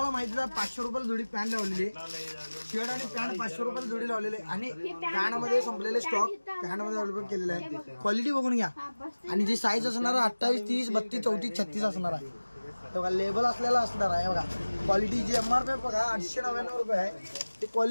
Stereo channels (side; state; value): both; inverted; correlation -1.00